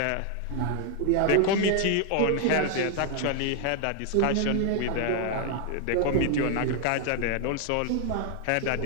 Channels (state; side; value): different; both; correlation 0.00